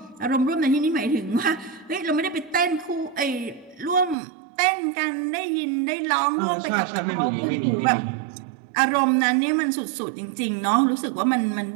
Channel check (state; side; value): drops out; left; at 4.2 s